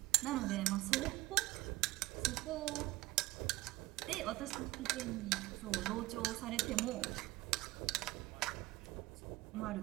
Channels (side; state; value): left; quieter; 18.5 dB